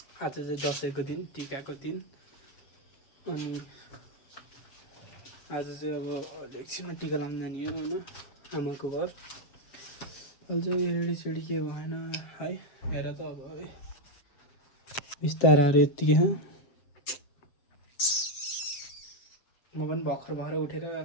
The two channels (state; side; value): late; right; 7.5 ms